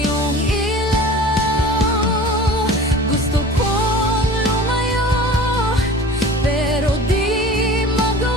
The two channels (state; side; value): normal; both; correlation 0.40